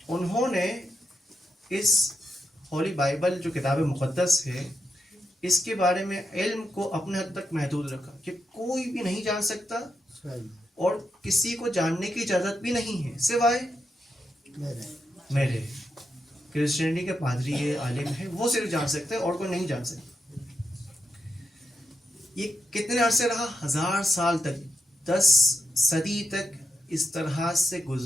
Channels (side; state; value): both; normal; correlation 0.85